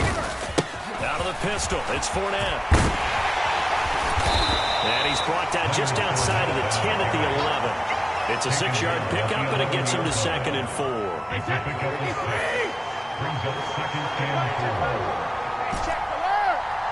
Pistol. It's Fournette. And he's brought down just outside of the 10 at the 11. It's a 6-yard pickup, and it gets him to 2nd and 4.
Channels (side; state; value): both; identical; correlation 1.00